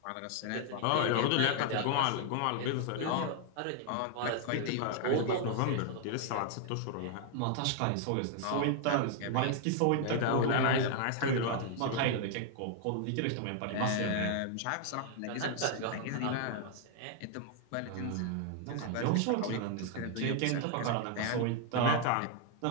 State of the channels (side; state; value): both; different; correlation 0.00